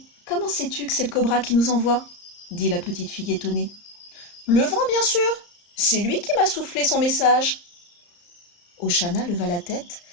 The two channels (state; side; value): late; right; 34 ms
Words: comment sais-tu que c'est le cobra qui nous envoie ?» dit la petite fille étonnée. « Le vent, bien sûr. C'est lui qui m'a soufflé son message. » Oshana leva la tête,